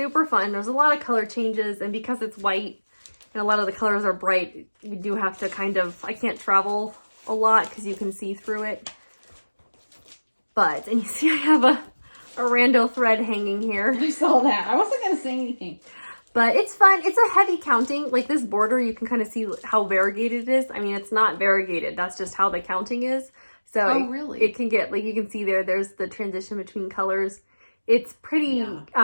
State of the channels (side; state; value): both; inverted; correlation -1.00